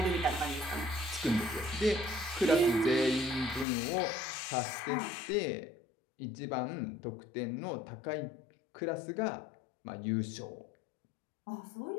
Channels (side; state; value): right; drops out; at 3.7 s